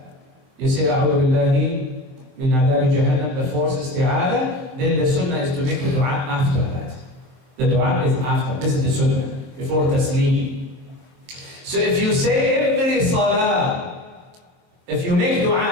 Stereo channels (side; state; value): left; late; 23 ms